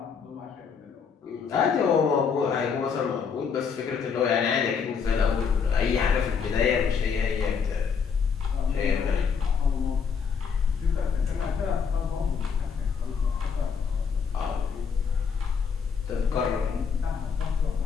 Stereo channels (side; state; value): right; quieter; 6.2 dB